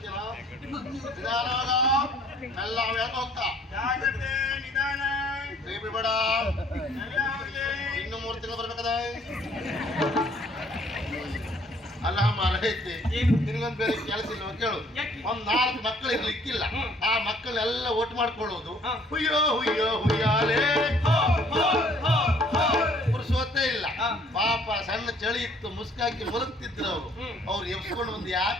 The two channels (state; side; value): normal; both; correlation 0.59